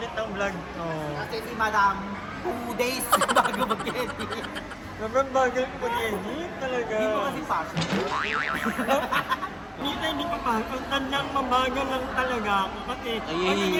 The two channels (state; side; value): identical; both; correlation 1.00